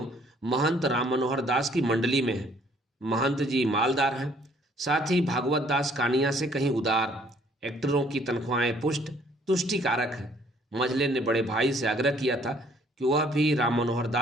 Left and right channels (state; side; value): normal; both; correlation 0.61